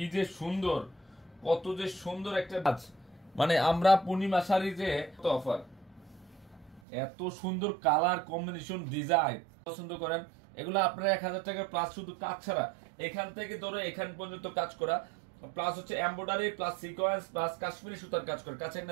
যে সুন্দর, কত যে সুন্দর একটা কাজ। মানে আমরা পূর্ণিমা শাড়ি যে অফার, এত সুন্দর কালার কম্বিনেশন ডিজাইন পছন্দ করেন, এগুলো আপনারা 1000 টাকা প্লাস, শুধু কাজ ছাড়া এখান থেকে ধরে এখান পর্যন্ত কাজ করা, প্লাস হচ্ছে embroidery plus sequence plus Kashmiri সুতার কাজ করে। কাছে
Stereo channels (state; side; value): drops out; left; at 6.8 s